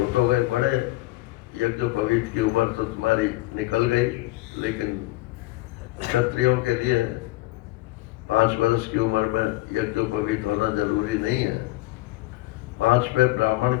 हो गए बड़े, यज्ञोपवीत की उम्र तो तुम्हारी निकल गई, लेकिन क्षत्रियों के लिए 5 वर्ष की उम्र में यज्ञोपवीत होना जरूरी नहीं है। 5 पे ब्राह्मण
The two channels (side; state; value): right; quieter; 19.0 dB